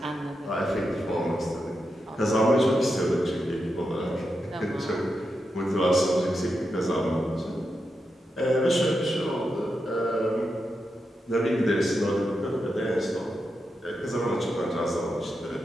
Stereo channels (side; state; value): both; normal; correlation 0.87